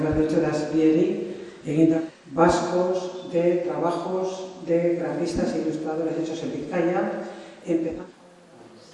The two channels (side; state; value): both; identical; correlation 1.00